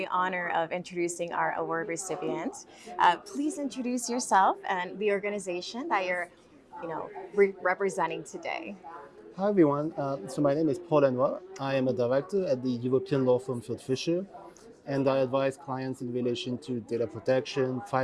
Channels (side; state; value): both; identical; correlation 1.00